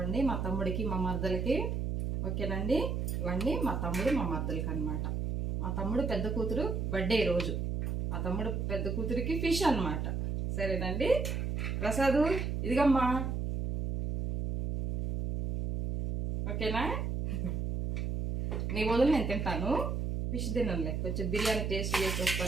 మా తమ్ముడికి మా మరదలకి. ఓకేనండి? ఇవ్వండి మా తమ్ముడు మా మరదలకి అన్నమాట. మా తమ్ముడు పెద్ద కూతురు బర్త్డే రోజు, మా తమ్ముడు పెద్ద కూతురికి ఫిష్ అన్నమాట. సరేనండి? ప్రసాదు ఇదిగమ్మా, ఓకేనా? నీ వదులు నేను తింటాను, ఫిష్ తినలే, కొంచెం బిర్యానీ టేస్ట్ చేసి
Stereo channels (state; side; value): noise; right; hum, 1 dB below the sound